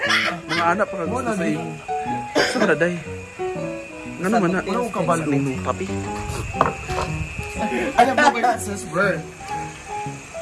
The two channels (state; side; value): identical; both; correlation 1.00